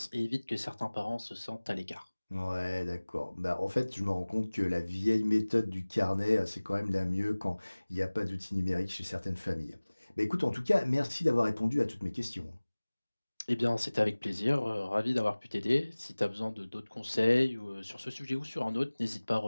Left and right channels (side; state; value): both; inverted; correlation -1.00